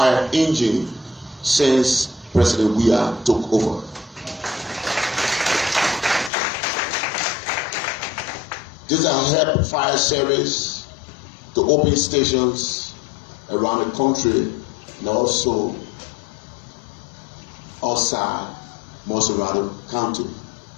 engines since President Weah took over. These are help fire service to open stations around the country and also outside Monserrado County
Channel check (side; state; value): right; drops out; at 6.3 s